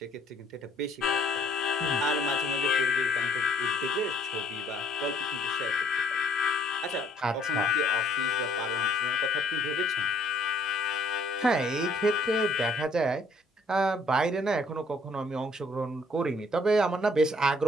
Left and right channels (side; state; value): both; normal; correlation 0.63